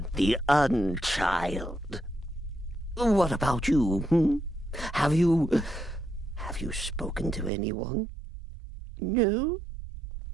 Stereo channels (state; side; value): drops out; left; at 7.5 s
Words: the Unchild. What about you? Have you spoken to anyone? No?